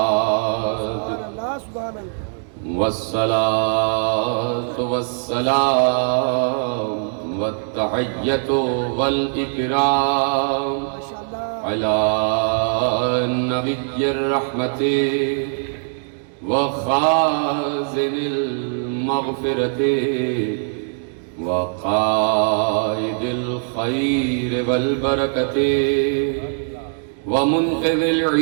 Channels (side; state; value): left; silent; 65 dB below the other